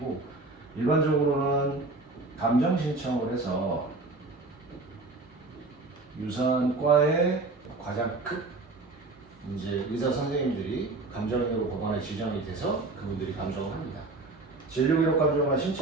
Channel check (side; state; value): left; quieter; 3.3 dB